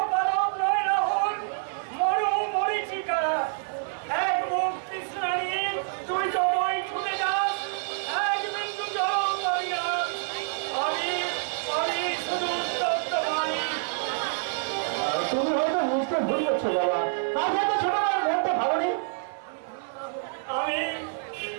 পালক নয় রাহুল, মরু মরিচিকা। এক মুখ তৃষ্ণা নিয়ে তুই জমাই ছুটে যাস, এক বিন্দু জল পাবি না। আমি শুধু উত্তপ্ত পানি। তুমি হয়তো বুঝতে ভুল করছো বাবা। আজ হয়তো ছোট মার মনটা ভালো নেই। আমি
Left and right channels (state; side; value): silent; left; 60 dB below the other